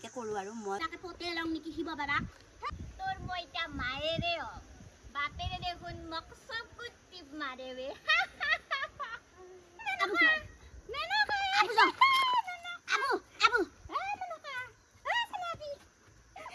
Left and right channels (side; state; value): both; identical; correlation 1.00